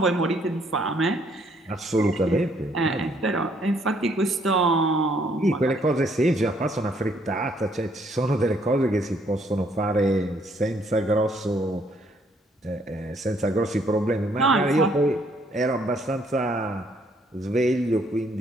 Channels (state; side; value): normal; both; correlation 0.67